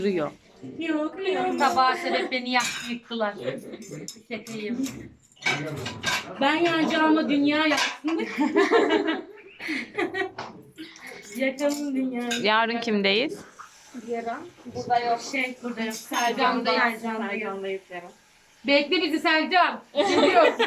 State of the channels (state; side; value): identical; both; correlation 1.00